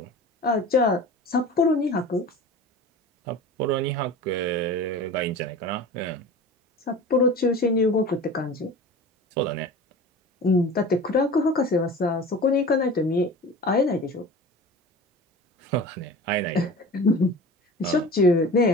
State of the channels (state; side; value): normal; both; correlation 0.36